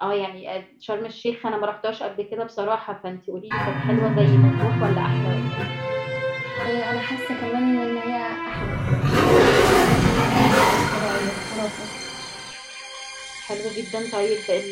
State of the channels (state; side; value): identical; both; correlation 1.00